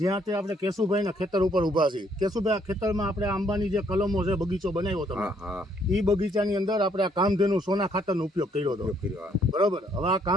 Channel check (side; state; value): both; normal; correlation 0.68